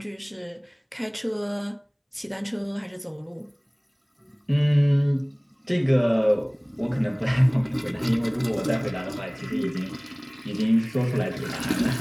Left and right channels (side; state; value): both; identical; correlation 1.00